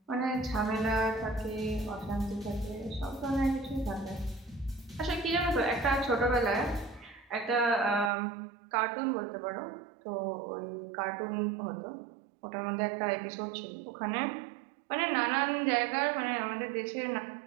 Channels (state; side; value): drops out; left; at 8.1 s